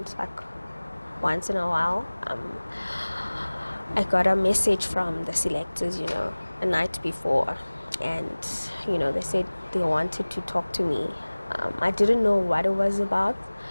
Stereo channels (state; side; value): inverted; both; correlation -1.00